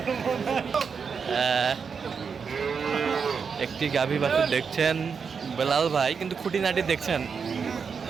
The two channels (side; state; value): left; quieter; 6.0 dB